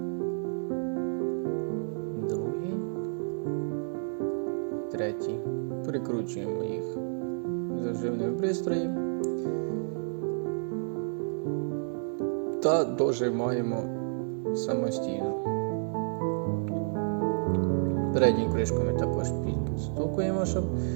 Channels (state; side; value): silent; left; digital silence